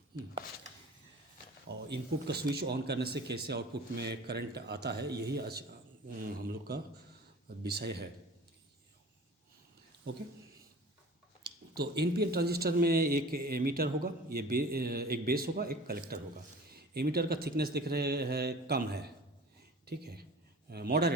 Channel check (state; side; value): normal; both; correlation 0.41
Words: और इनपुट का स्विच ऑन करने से कैसे आउटपुट में करंट आता है, यही आज हम लोग का विषय है। ओके, तो एनपीएन ट्रांजिस्टर में एक एमीटर होगा, ये एक बेस होगा, एक कलेक्टर होगा। एमीटर का थिकनेस दिख रहे हैं कम है, ठीक है,